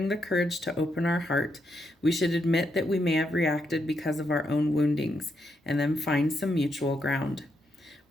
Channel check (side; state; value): both; normal; correlation 0.80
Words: the courage to open our heart, we should admit that we may have reacted because of our own woundings, and then find some mutual ground.